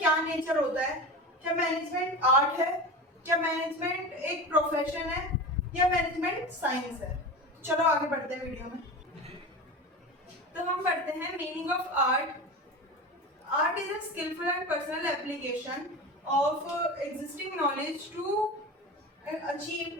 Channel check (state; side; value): normal; both; correlation 0.28